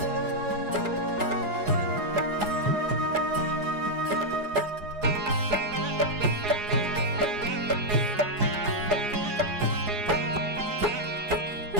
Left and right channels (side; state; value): left; late; 4.8 ms